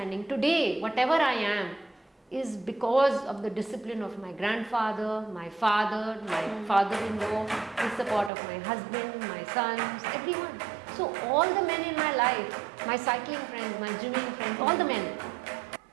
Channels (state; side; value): drops out; left; at 8.3 s